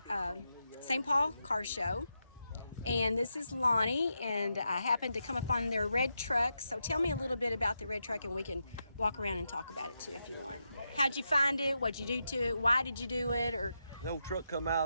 St. Paul Car Show, and this is Lonnie, and I happened to come up on their red truck. So tell me a little bit about the red truck, and we can walk around and talk about it too if you want. How'd you find it? What'd you do to it? Why did you do it? Or The old truck come out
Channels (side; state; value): both; inverted; correlation -0.86